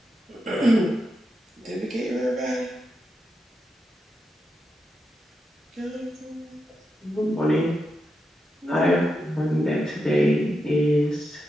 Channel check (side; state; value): both; normal; correlation 0.86